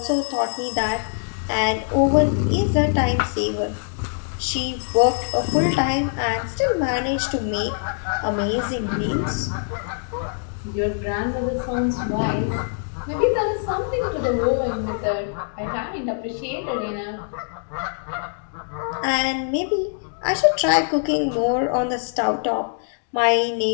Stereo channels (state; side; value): silent; right; 63 dB below the other